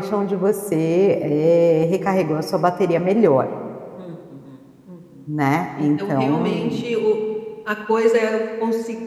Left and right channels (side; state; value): both; identical; correlation 1.00